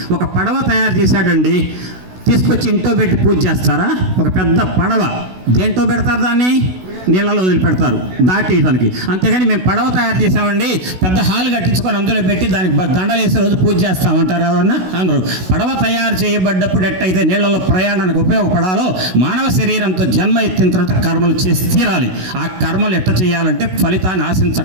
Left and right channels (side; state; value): left; late; 16 ms